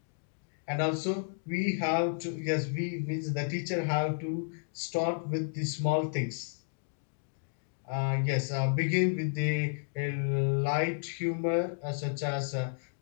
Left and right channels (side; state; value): right; silent; digital silence